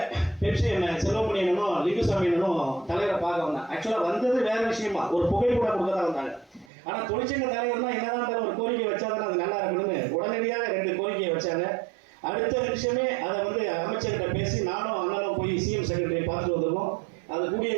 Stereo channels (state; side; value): drops out; left; at 6.7 s